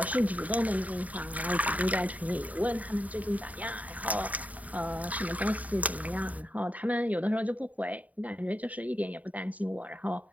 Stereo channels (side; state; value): left; late; 0.072 ms